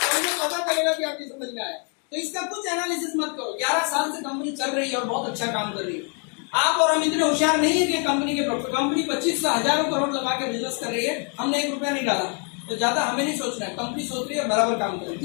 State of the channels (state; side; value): quieter; right; 39.5 dB